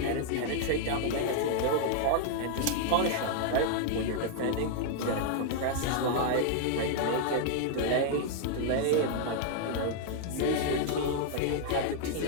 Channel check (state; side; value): different; both; correlation -0.01